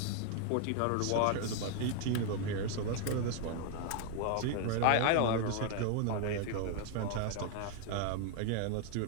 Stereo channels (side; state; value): both; different; correlation 0.00